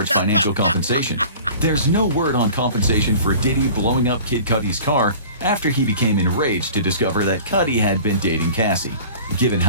financial compensation. There's no word on compensation for Diddy blowing up Kid Cudi's car after he became enraged to discover that Cudi had been dating Cassie. Given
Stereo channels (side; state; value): both; inverted; correlation -0.42